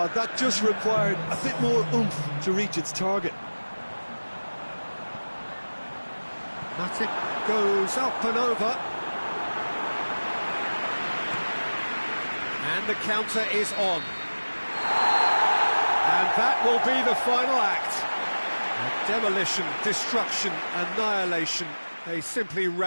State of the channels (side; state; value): both; inverted; correlation -1.00